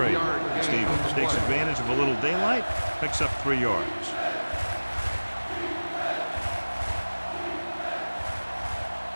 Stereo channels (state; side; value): inverted; both; correlation -1.00